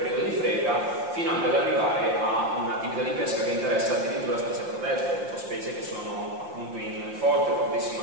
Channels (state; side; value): late; left; 5.7 ms